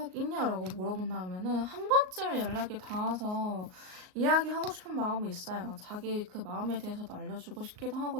있냐라고 물어본다면은 한 번쯤 연락이 닿아서 이야기하고 싶은 마음이 있어요. 자기 그 마음에 대해서도 알려주고 싶기도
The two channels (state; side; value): late; left; 38 ms